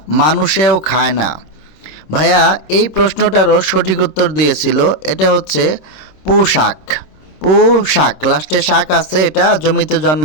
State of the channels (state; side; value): late; right; 26 ms